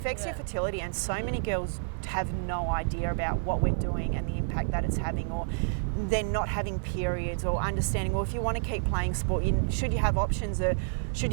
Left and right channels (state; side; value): silent; left; digital silence